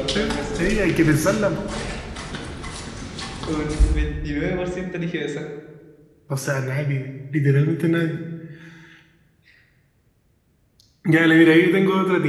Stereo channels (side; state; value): both; identical; correlation 1.00